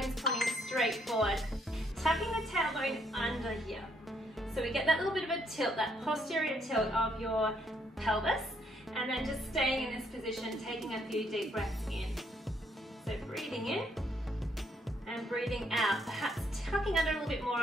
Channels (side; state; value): both; normal; correlation 0.71